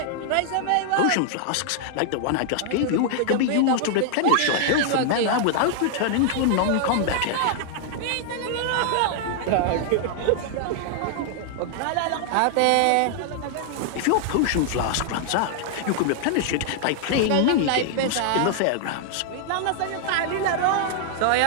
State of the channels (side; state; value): both; different; correlation -0.01